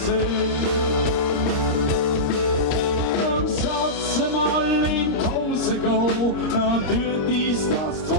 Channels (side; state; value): right; late; 27 ms